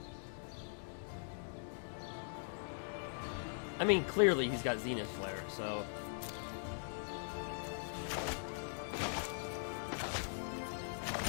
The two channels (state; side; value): silent; right; digital silence